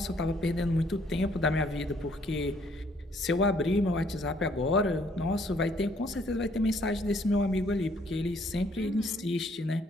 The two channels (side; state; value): both; normal; correlation 0.65